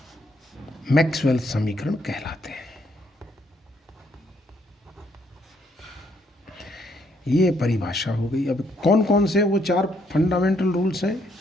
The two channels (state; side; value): normal; both; correlation 0.71